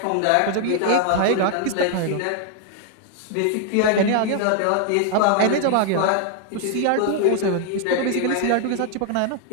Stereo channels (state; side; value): different; both; correlation 0.00